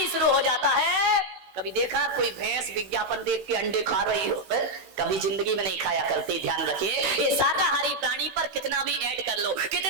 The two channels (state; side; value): late; left; 16 ms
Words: शुरू हो जाता है। कभी देखा कोई भैंस विज्ञापन देख के अंडे खा रही हो? कभी जिंदगी में नहीं खाया करती। ध्यान रखिए, ये शाकाहारी प्राणी पर कितना भी ऐड कर लो,